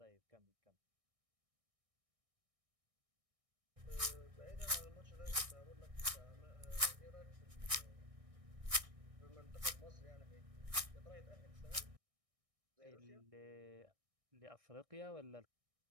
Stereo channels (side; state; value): left; late; 1.6 ms